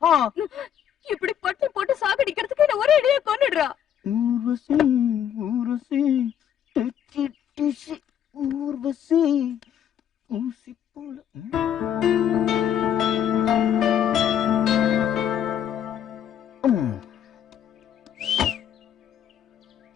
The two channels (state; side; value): quieter; right; 9.5 dB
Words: இப்படி பட்டு போட்டு சாகடிக்கிறதுக்கு என்ன ஒரே அடியா கொன்னுடுறா. ஊர்வசி ஊர்வசி ஊர்வசி ஊசி போல.